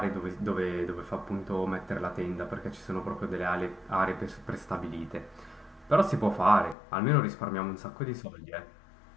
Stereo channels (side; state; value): right; drops out; at 6.8 s